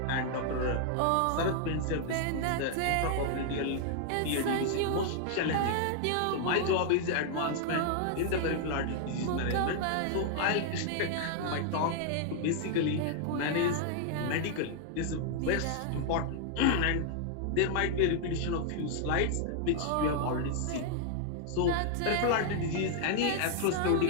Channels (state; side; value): different; both; correlation 0.00